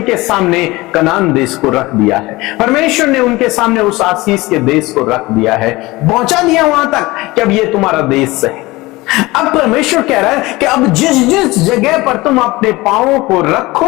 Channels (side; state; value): right; quieter; 20.8 dB